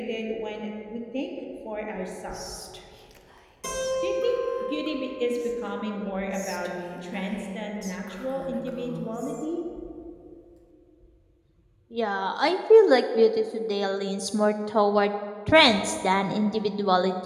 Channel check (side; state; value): both; identical; correlation 1.00